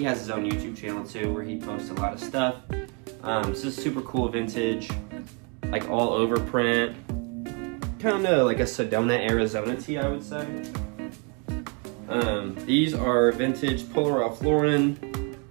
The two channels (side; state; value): left; quieter; 34.6 dB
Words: has his own YouTube channel too, where he posts a lot of stuff. This is super cool vintage, like all over print. Kind of like a Sedona, Arizona tee, I would say. These are vintage Polo Ralph Lauren,